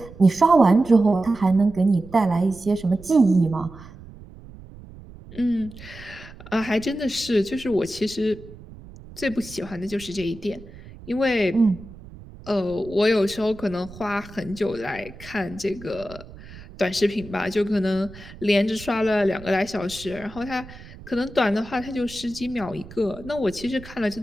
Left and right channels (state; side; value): noise; right; rumble, 18 dB below the sound